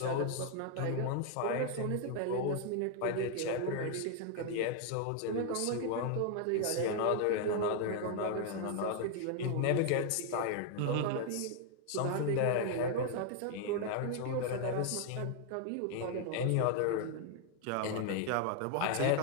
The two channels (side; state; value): both; different; correlation 0.00